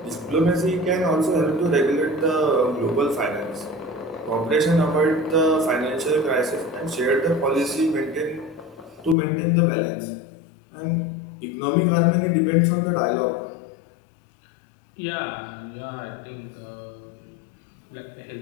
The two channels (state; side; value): drops out; right; at 9.2 s